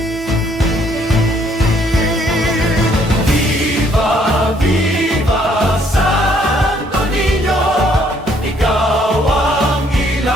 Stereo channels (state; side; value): normal; both; correlation 0.66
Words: Viva, viva Santo Niño, ikaw ang